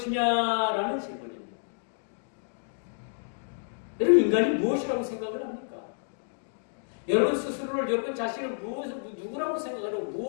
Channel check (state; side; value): silent; right; digital silence